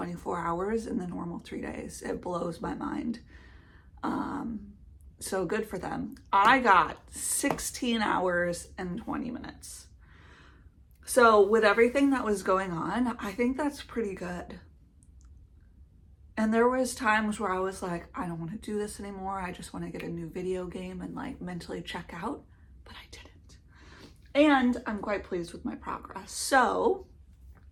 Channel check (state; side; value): identical; both; correlation 1.00